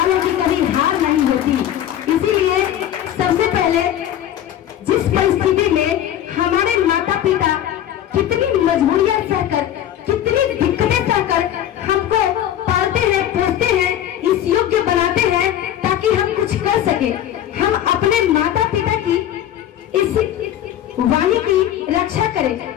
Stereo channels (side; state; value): right; quieter; 11.3 dB